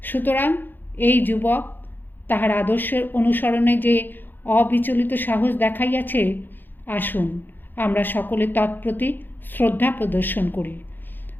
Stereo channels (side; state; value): right; late; 0.092 ms